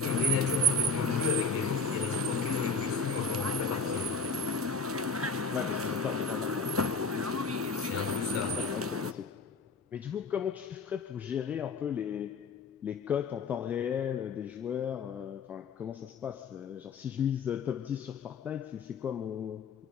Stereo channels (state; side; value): quieter; right; 3.8 dB